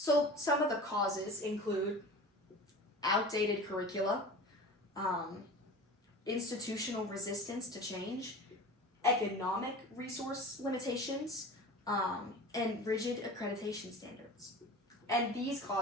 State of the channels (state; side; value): normal; both; correlation 0.35